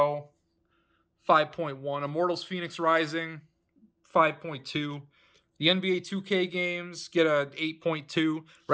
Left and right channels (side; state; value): both; identical; correlation 1.00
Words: 5.1. Immortals Phoenix Rising, 5.2. The NBA 2K games get a 8.2.